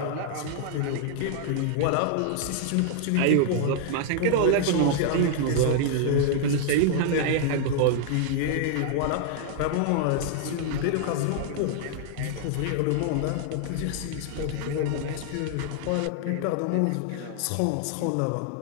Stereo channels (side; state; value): both; different; correlation 0.00